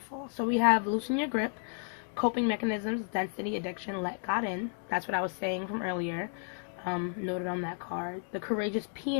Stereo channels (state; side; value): silent; right; 56 dB below the other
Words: So we have loosen your grip, coping mechanisms, density, addiction, let God in. That's what I was saying from earlier. Noted on that card. The courageous